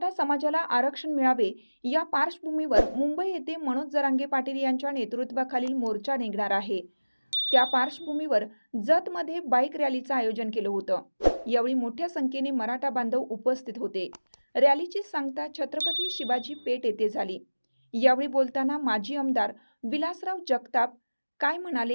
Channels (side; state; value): both; inverted; correlation -1.00